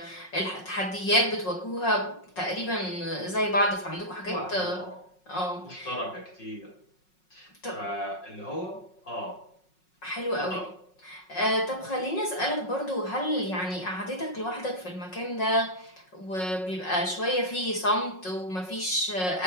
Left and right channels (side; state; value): right; late; 5.5 ms